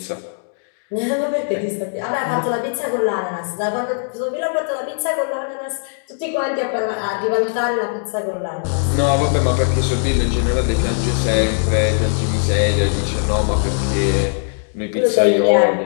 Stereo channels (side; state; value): right; silent; digital silence